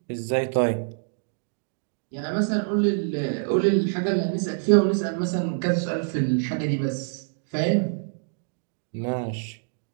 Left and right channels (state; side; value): silent; left; digital silence